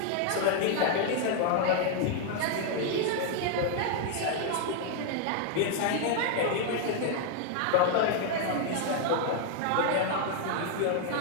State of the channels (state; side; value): different; both; correlation 0.00